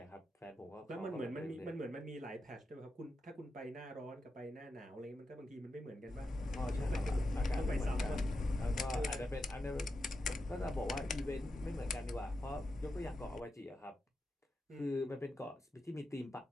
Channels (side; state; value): both; normal; correlation 0.88